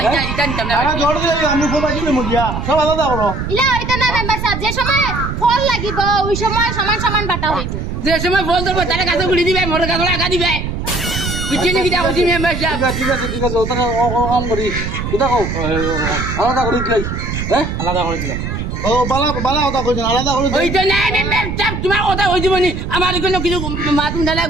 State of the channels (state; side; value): noise; right; rumble, 4 dB below the sound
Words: এটা নিতাম না আমার জড় দিলে আমি ফুল বাজি মুজিয়া সব আলাদা করো ইলা হইতো না মেম্বার সাহেব যে সময় ফল লাগিব ওই সময় সমান সমান বাটা হইব যে সময় ফোন ধরবো তারা কাছে ঘুরি দিবে মোটর কাছে আগা দিবে বুঝছেন কি দেখো মেম্বার সাহেব ঠিক আছে ওখানে কাম করি কিতা কও আলাদা করে দিলাই হ্যাঁ আলাদা করে দিলা ও বালা কথা কইছেন আলাদা করে ওই তো না মেম্বার সাহেব তোমার কথা হই দিব নি আমার কোনো কিছু মাতুন দালা